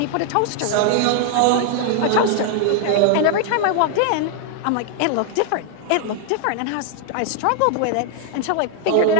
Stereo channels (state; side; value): different; both; correlation 0.00